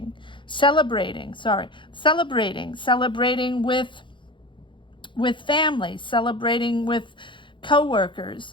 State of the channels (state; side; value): late; right; 0.23 ms